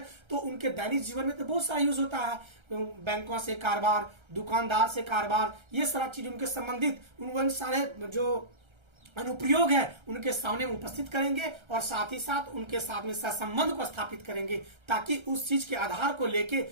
तो उनके दैनिक जीवन में तो बहुत सारा यूज होता है, बैंकों से कारोबार, दुकानदार से कारोबार, ये सारा चीज उनके संबंधित उन सारे जो अनुप्रयोग है उनके सामने उपस्थित करेंगे और साथ ही साथ उनके साथ में सहसंबंध को स्थापित करेंगे ताकि उस चीज के आधार को लेके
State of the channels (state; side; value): late; left; 1.3 ms